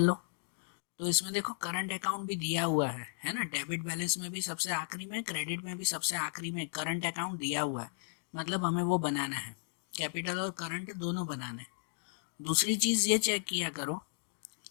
तो इसमें देखो, करंट अकाउंट भी दिया हुआ है ना। डेबिट बैलेंस में भी सबसे आखिरी में, क्रेडिट में भी सबसे आखिरी में करंट अकाउंट दिया हुआ है, मतलब हमें वो बनाना है। कैपिटल और करंट दोनों बनाने। दूसरी चीज़ ये चेक किया करो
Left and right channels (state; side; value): silent; right; digital silence